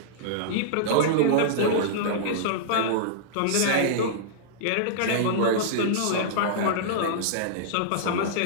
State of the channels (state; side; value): different; both; correlation -0.02